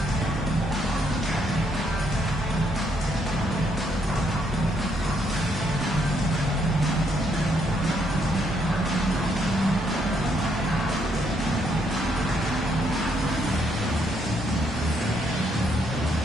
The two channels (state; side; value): normal; both; correlation 0.73